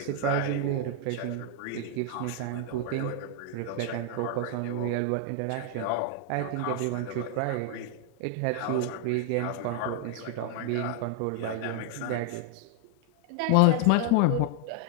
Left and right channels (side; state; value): both; different; correlation 0.00